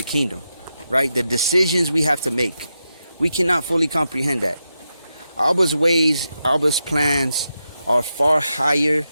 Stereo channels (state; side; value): inverted; both; correlation -0.87